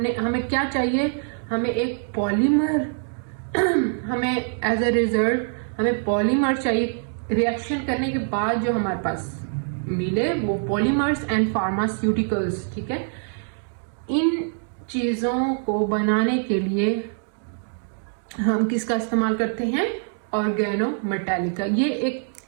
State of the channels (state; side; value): silent; left; 62 dB below the other